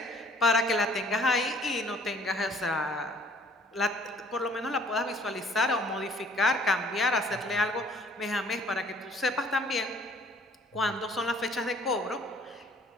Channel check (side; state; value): both; normal; correlation 0.56